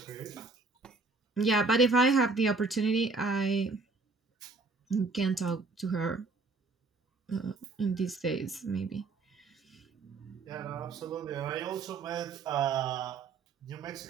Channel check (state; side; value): quieter; left; 3.9 dB